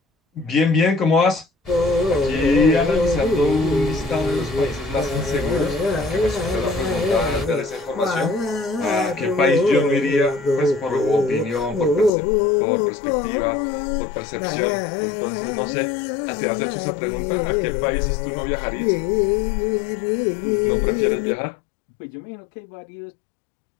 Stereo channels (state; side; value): drops out; right; at 12.1 s